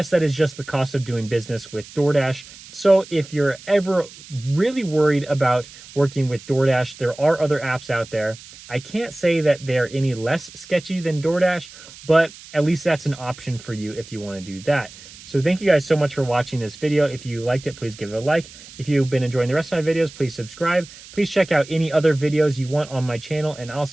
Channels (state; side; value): noise; right; hiss, 19 dB below the sound